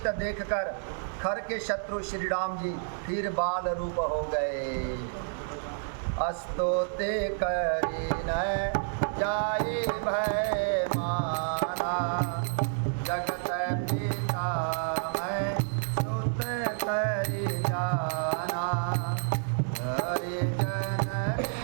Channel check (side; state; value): left; silent; 58 dB below the other